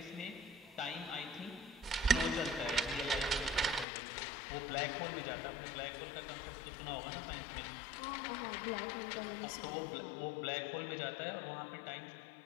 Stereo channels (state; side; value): drops out; right; at 3.9 s